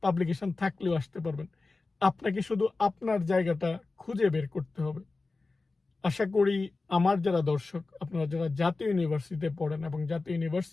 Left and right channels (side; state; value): right; quieter; 3.6 dB